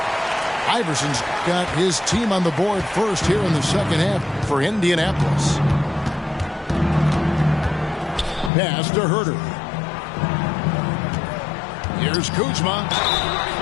Iverson's got his team on the board first here in the second half for Indianapolis. Pass to Herder. Here's Kuzma.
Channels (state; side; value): drops out; right; at 8.5 s